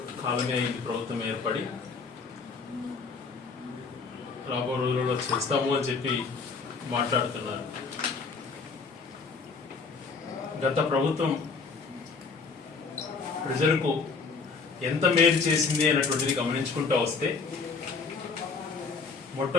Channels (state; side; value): quieter; right; 4.8 dB